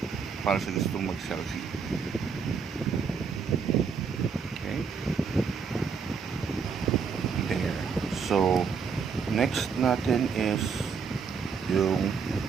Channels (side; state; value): left; quieter; 5.9 dB